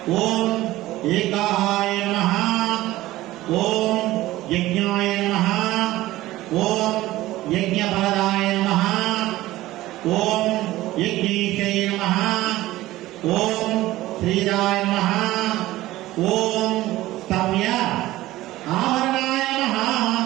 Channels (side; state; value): left; quieter; 16.6 dB